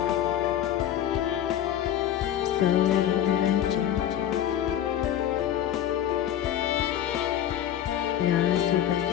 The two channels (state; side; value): quieter; right; 10.9 dB